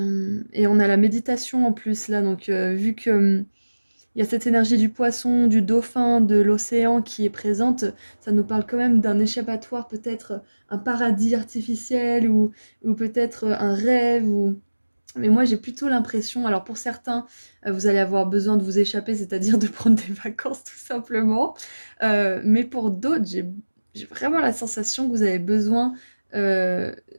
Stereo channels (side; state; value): both; inverted; correlation -1.00